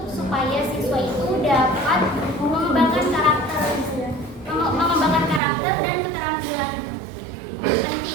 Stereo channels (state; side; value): drops out; left; at 5.4 s